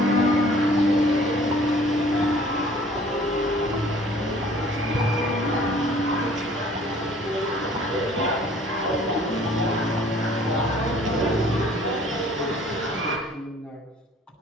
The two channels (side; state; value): both; normal; correlation 0.54